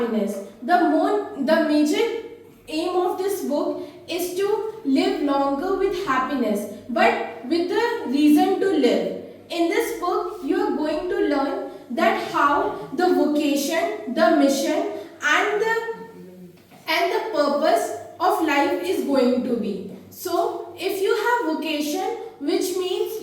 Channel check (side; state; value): both; identical; correlation 1.00